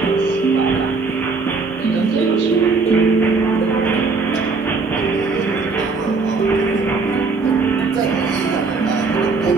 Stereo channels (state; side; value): quieter; left; 4.2 dB